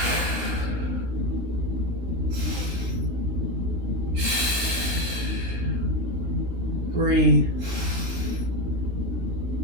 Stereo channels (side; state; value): left; late; 16 ms